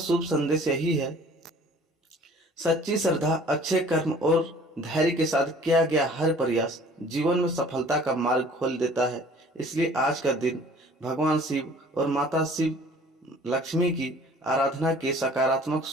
संदेश यही है, सच्ची श्रद्धा, अच्छे कर्म और धैर्य के साथ किया गया हर प्रयास जीवन में सफलता का मार्ग खोल देता है। इसलिए आज का दिन भगवान शिव और माता शिव लक्ष्मी की आराधना की सकारात्मक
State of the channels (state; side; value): normal; both; correlation 0.51